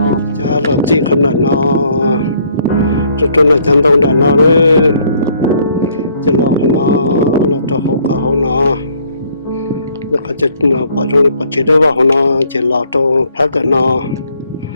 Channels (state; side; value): inverted; both; correlation -0.64